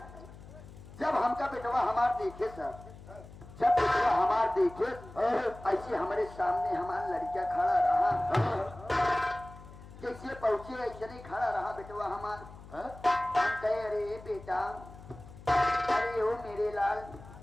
जब हमका बेटवा हमार देखे सर जब बेटवा हमार देखे ऐसे हमारे सामने हमारा लड़किया खड़ा रहा जैसे पहुंचे ऐसे नहीं खड़ा रहा बेटवा हमार। हम कहे अरे बेटा अरे ओ मेरे लाल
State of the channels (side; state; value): left; noise; hum, 18 dB below the sound